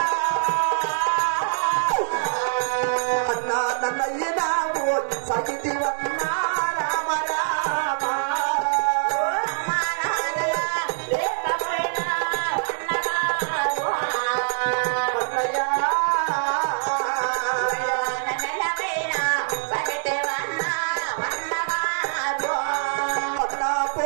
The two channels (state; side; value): silent; left; 62 dB below the other